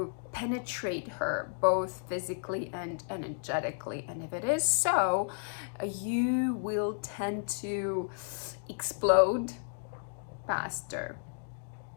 penetrate her both physically and energetically. And if it is so, you will tend to explode faster.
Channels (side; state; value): right; silent; digital silence